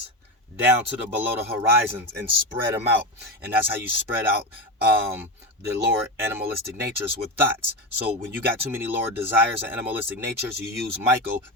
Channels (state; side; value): normal; both; correlation 0.18